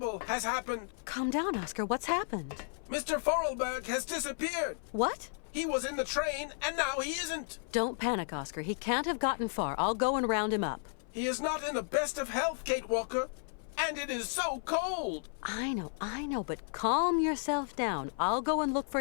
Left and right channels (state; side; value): silent; right; 55 dB below the other